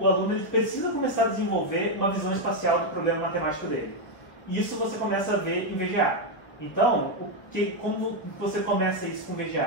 aluno ele precisa começar a desenvolver uma visão espacial do problema matemático dele. Isso você começa a ver em VGA. Então, como você começa isso com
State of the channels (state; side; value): late; right; 1.0 ms